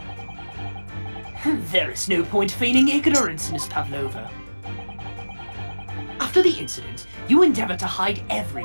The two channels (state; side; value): inverted; both; correlation -1.00